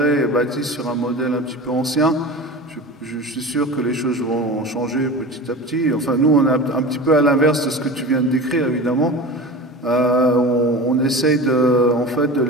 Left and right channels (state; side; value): normal; both; correlation 0.32